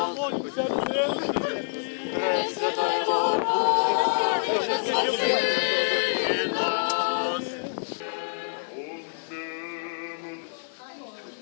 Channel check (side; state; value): right; silent; 55 dB below the other